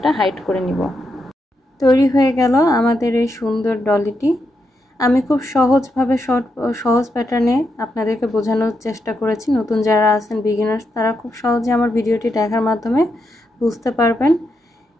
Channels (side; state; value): both; normal; correlation 0.83